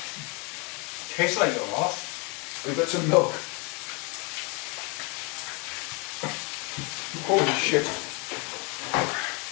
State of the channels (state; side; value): quieter; right; 30.5 dB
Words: tastes like a lot. we've got some milk. Holy shit.